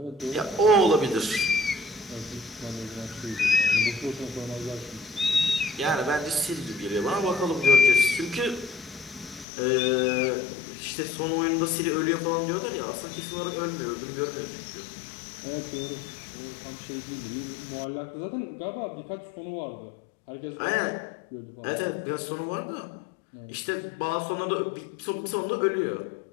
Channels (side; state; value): right; drops out; at 9.5 s